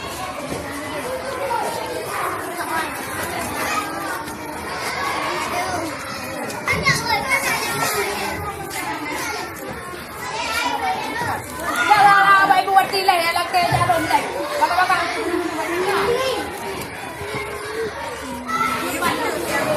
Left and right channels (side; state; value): both; identical; correlation 1.00